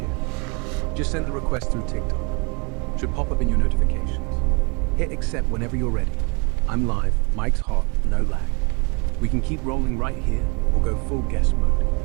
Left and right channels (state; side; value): quieter; left; 32.2 dB